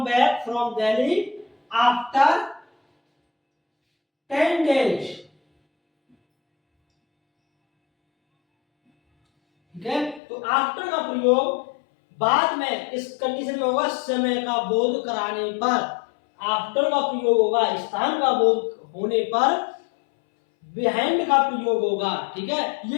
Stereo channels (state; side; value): drops out; right; at 10.2 s